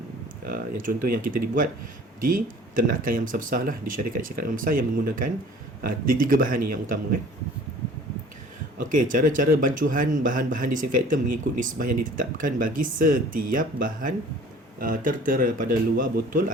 dibuat di ternakan yang besar-besar lah, di syarikat-syarikat yang besar yang menggunakan tiga bahan ni yang utama kan. Okey, cara-cara bancuhan bahan-bahan disinfektan mengikut nisbah yang ditetapkan bagi setiap bahan tertera pada luar botol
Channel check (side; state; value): both; normal; correlation 0.48